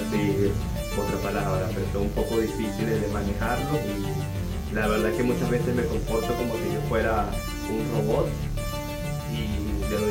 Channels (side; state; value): both; identical; correlation 1.00